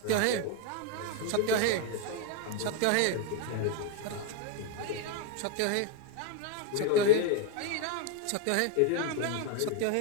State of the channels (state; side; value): different; both; correlation 0.01